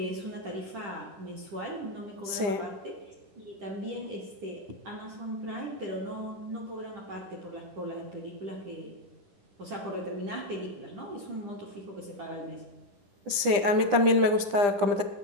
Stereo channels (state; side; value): late; left; 9.9 ms